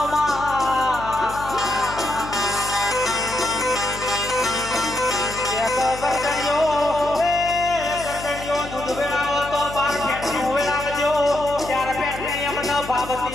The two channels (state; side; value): noise; left; hum, 12 dB below the sound